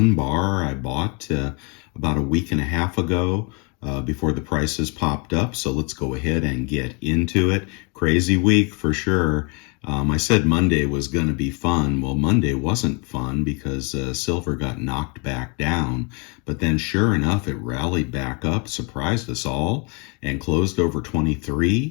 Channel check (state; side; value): quieter; right; 33.2 dB